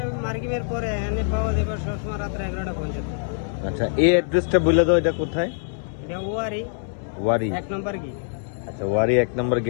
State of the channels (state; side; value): silent; right; 63 dB below the other